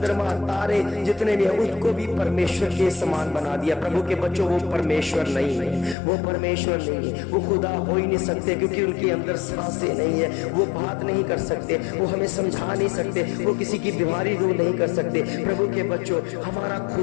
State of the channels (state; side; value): drops out; right; at 6.0 s